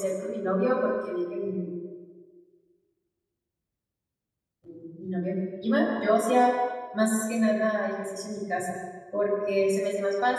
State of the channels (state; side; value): identical; both; correlation 1.00